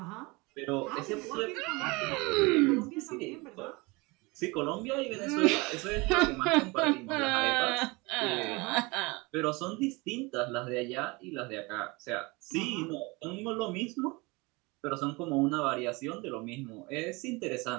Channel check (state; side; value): quieter; left; 25.4 dB